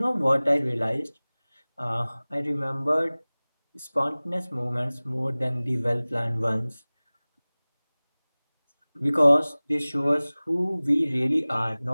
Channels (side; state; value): both; inverted; correlation -1.00